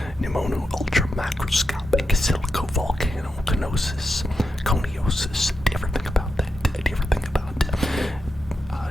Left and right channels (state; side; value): normal; both; correlation 0.86